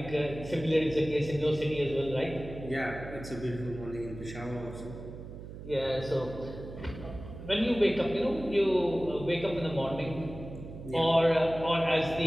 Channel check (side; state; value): right; noise; hum, 12 dB below the sound